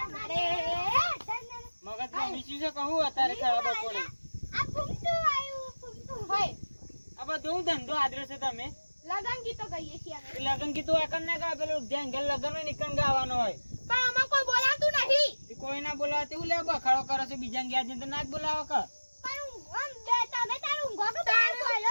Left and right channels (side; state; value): both; inverted; correlation -1.00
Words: બપોરે આ ફૂમતું આવ્યું ફૂમતું હોય આ બધું ધંધો આદરે છે તમે લગન ગીતો ગાઈએ છીએ અમે. લગન કીધું એકન ના ગાય પેલું જ્યાં ઘેર લગન હોય નીકળ ગાવાનો હોય પણ આમાં કોઈ બોલાતું નહીં. એ કોઈ ના બોલાવે તેવું લે બખાડો કરો છો બીજા ગયા છે તો ના જ બોલાવો કે પણ આમ બે તમે તારું ઊંઘો કે તારું બોલો